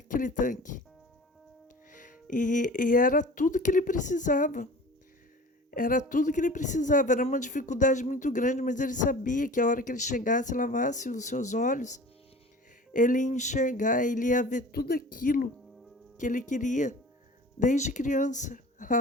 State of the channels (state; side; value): normal; both; correlation 0.41